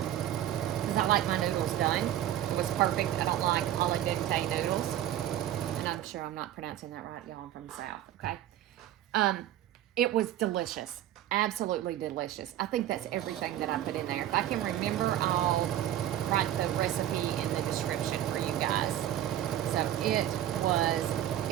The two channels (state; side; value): quieter; left; 12.4 dB